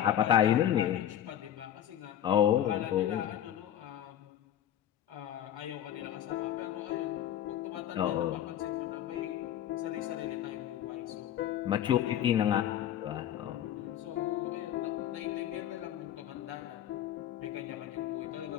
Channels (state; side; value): quieter; right; 11.0 dB